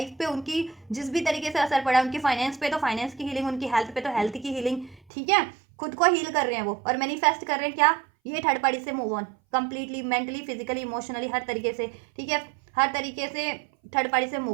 पे उनकी जिस भी तरीके से असर पड़ा, उनकी फाइनेंस पे तो फाइनेंस की हीलिंग, उनकी हेल्थ पे तो हेल्थ की हीलिंग, ठीक है, खुद को हील कर रहे हैं वो, और मैनिफेस्ट कर रहे हैं क्या, ये थर्ड पार्टी से move on completely, mentally, physically, emotionally, हर तरीके से, ठीक है, हर तरीके से थर्ड पार्टी से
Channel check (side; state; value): left; drops out; at 5.0 s